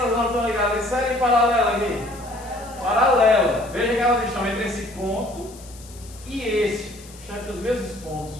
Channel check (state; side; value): noise; left; hiss, 20 dB below the sound